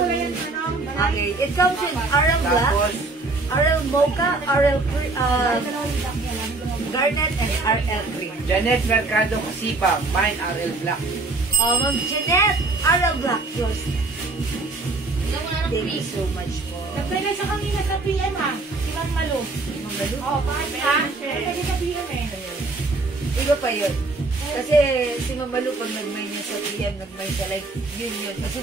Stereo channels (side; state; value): left; quieter; 3.3 dB